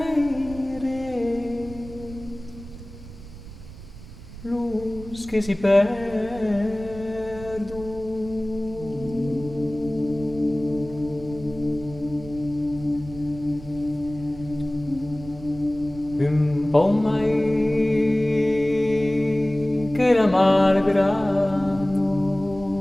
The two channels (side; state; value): right; noise; rumble, 15 dB below the sound